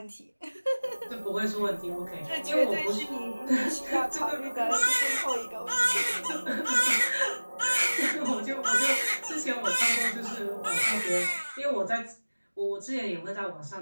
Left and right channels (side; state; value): both; inverted; correlation -1.00